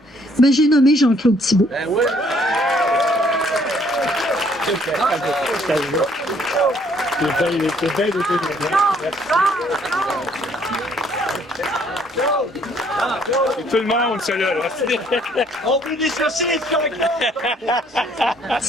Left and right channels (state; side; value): normal; both; correlation 0.64